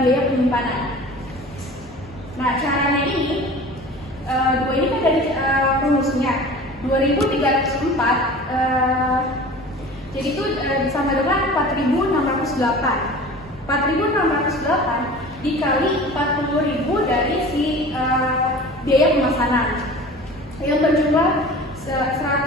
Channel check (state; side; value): noise; left; hum, 26 dB below the sound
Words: biaya penyimpanan. Nah, caranya ini, dua ini kan dari rumusnya 2.304, jadi itu sama dengan 4.608. 4.608 dikali 40.000 dari si biaya pemesanan yang berjumlah